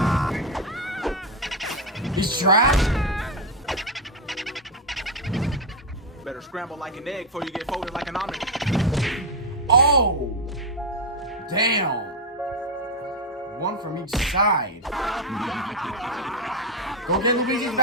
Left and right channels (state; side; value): normal; both; correlation 0.07